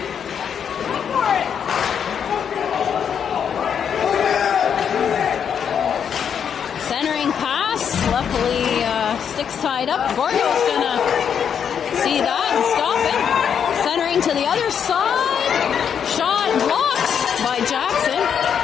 Centering pass, luckily sticks tied up. Gordo's gonna see that and stop it. Centering to the other side. Shot blocked by Jackson.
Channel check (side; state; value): right; quieter; 7.8 dB